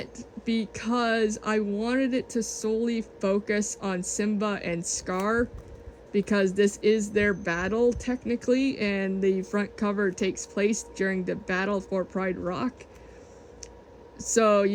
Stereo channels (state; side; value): identical; both; correlation 1.00